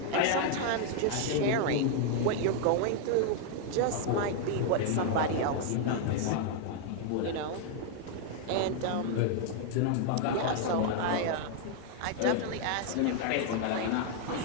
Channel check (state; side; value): different; both; correlation 0.00